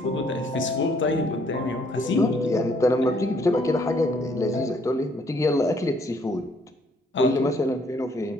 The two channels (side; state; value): both; normal; correlation 0.66